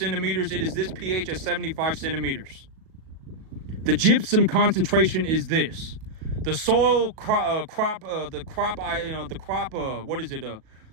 It is this pH at 75 centimeters. The gypsum concentration is this. The soil the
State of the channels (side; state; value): left; late; 37 ms